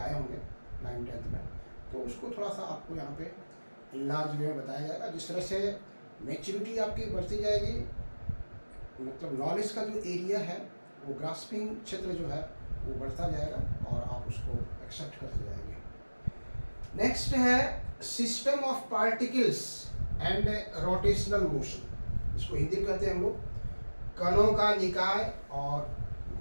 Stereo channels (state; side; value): inverted; both; correlation -1.00